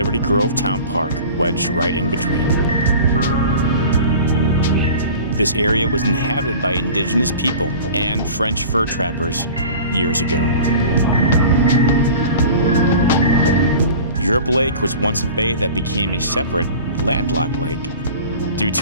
Grove Town Park wedged right in between. This area was inhabited by Indigenous people and French fur trappers years ago. Europe Lake was once a bay that became a separate, landlocked lake due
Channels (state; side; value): inverted; both; correlation -0.39